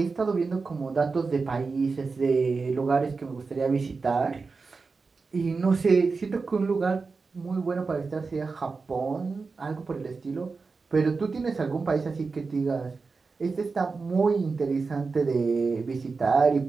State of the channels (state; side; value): quieter; left; 4.4 dB